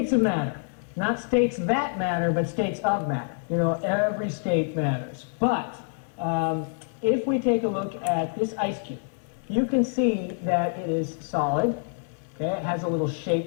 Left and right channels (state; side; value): silent; right; digital silence